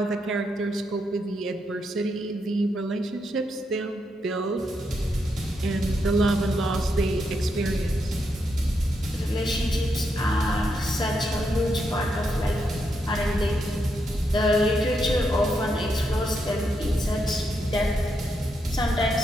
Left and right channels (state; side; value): normal; both; correlation 0.81